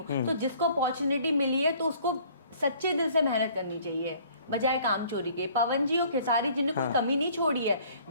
तो जिसको अपॉर्चुनिटी मिली है तो उसको सच्चे दिल से मेहनत करनी चाहिए, बजाय काम चोरी के। पवन जी और खेसारी जी ने कोई कमी नहीं छोड़ी है,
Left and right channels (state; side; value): inverted; both; correlation -0.55